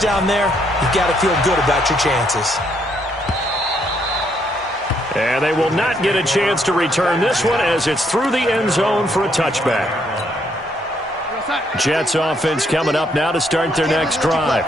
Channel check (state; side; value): normal; both; correlation 0.72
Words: there, you got to feel good about your chances. And they will not get a chance to return this one as it's through the end zone for a touchback. Jets offense coming up now to start their next drive.